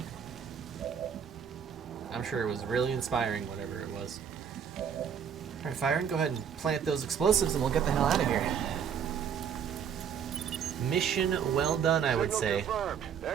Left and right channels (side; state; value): left; quieter; 7.8 dB